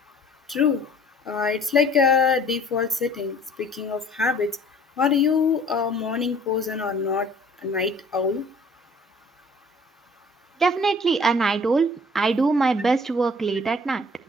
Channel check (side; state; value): both; normal; correlation 0.53